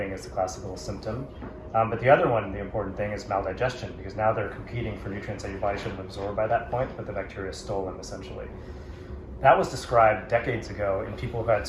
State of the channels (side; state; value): both; identical; correlation 1.00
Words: is the classical symptom. But the other one, the important thing, is maldigestion, because now they're competing for nutrients that your body should have absorbed by that point, but the bacteria stole them essentially. That was described decades ago in people who had